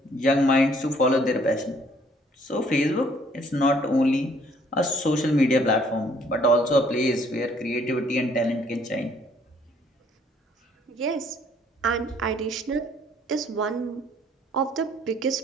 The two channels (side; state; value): both; normal; correlation 0.62